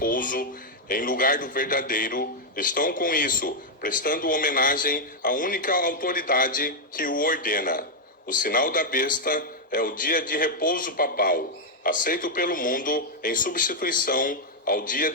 em lugar do verdadeiro, estão com isso prestando homenagem à única autoridade que o ordena. O sinal da besta é o dia de repouso papal, aceito pelo mundo em substituição ao dia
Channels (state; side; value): normal; both; correlation -0.01